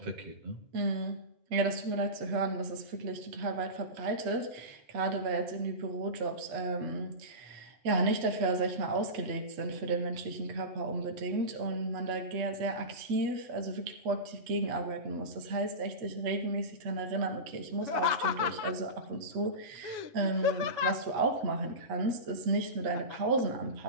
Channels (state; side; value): late; left; 8.3 ms